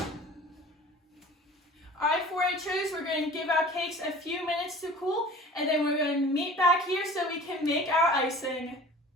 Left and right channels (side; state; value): both; normal; correlation 0.43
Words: Alright, 4-Hers, we're going to give our cakes a few minutes to cool, and then we're going to meet back here so we can make our icing.